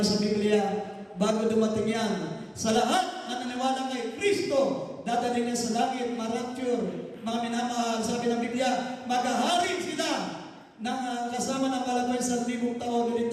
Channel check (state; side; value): identical; both; correlation 1.00